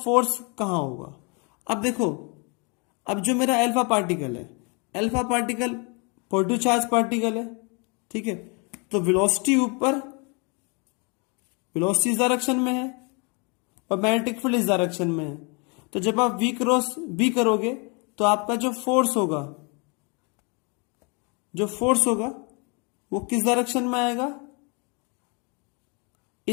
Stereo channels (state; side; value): quieter; right; 32.8 dB